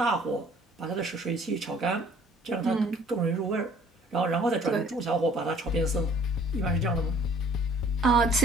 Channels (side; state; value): both; normal; correlation 0.55